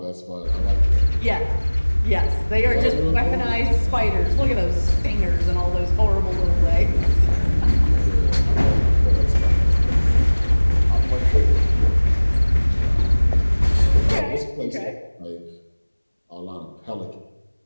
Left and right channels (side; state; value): both; inverted; correlation -1.00